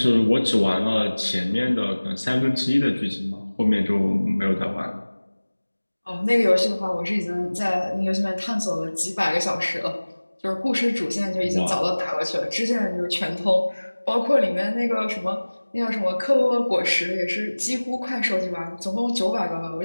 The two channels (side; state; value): both; inverted; correlation -1.00